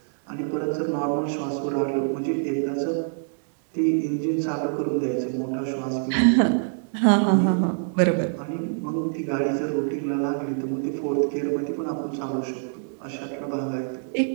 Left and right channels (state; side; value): silent; left; digital silence